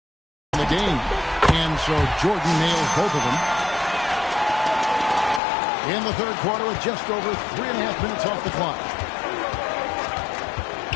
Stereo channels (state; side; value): drops out; right; at 5.4 s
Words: In the game, and so Jordan nails both of them. In the third quarter with just over 3.5 minutes off the clock.